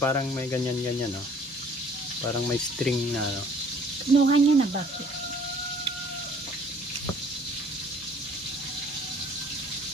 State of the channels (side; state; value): both; normal; correlation 0.55